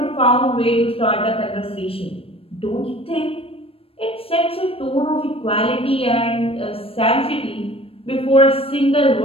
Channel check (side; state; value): right; late; 0.28 ms